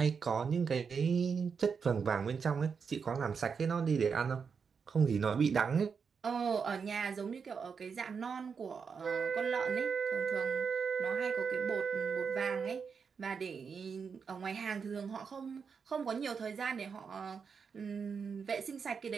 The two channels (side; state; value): left; quieter; 5.9 dB